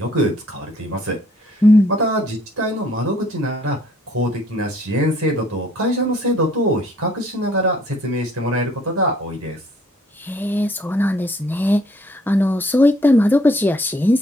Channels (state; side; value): normal; both; correlation 0.62